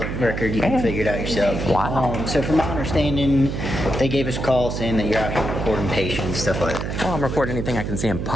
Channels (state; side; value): noise; right; hum, 4 dB below the sound